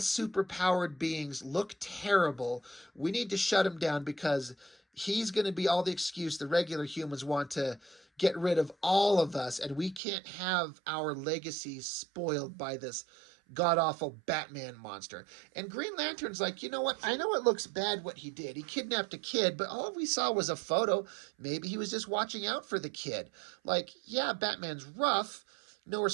superpowered beings look terrible. We need to shut him down because he's going to be all the excuse the regular humans want to get rid of all of us, and we can't have our legacy spoiled by this god-awful Batman monster. And Green Lantern's like, you know what? I know it looks bad what he did. He kidnapped a kid, but all we saw was a photo. Maybe he was just watching out for the kid. Like, yeah, Batman's rough, no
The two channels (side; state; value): left; drops out; at 10.0 s